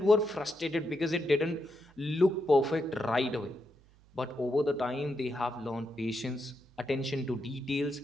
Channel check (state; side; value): noise; right; hum, 28 dB below the sound